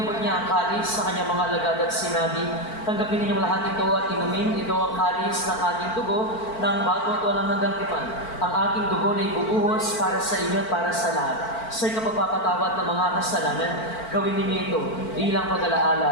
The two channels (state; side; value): late; right; 4.5 ms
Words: niya ang kalis sa kanyang mga alagad at sinabi, tanggapin ninyong lahat ito at inumin, ito ang kalis ng aking dugo, ng bago at walang hanggang tipan. Ang aking dugo na ibubuhos para sa inyo at para sa lahat. Sa kapagpapatawad ng mga kasalanan, gawin ninyo ito bilang